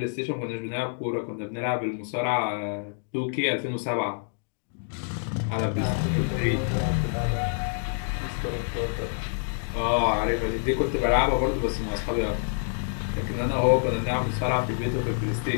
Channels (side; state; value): right; silent; digital silence